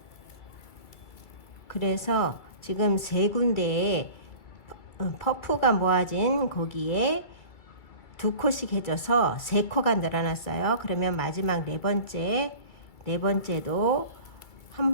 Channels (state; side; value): late; right; 2.3 ms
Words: 그래서 지금 3군데에 퍼프가 모아진 거기에 2코씩 해줘서 3코가 늘어났어요. 그러면 마지막 네 번째도 한